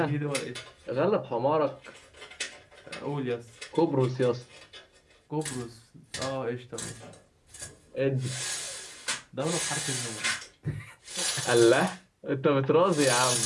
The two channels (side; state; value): both; identical; correlation 1.00